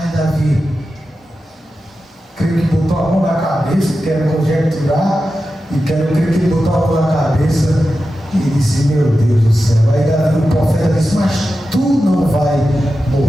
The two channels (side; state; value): both; normal; correlation 0.92